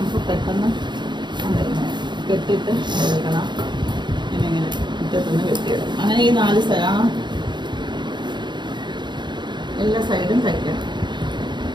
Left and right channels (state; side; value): late; left; 0.22 ms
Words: പെട്ടെന്ന് കെട്ടിയിട്ട് എടുക്കണം. ഇങ്ങനെ മുറ്റത്തുനിന്ന് കെട്ടിയിടണം. അങ്ങനെ ഈ 4 എല്ലാ സൈഡും തയ്ക്കണം.